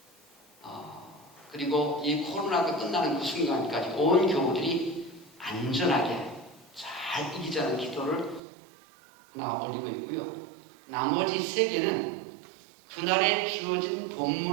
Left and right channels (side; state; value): left; drops out; at 8.4 s